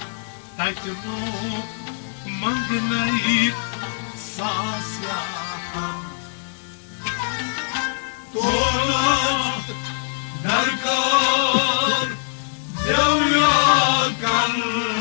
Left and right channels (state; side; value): silent; right; digital silence